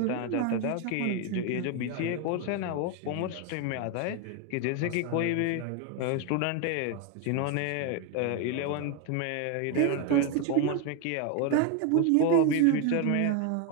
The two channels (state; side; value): different; both; correlation 0.01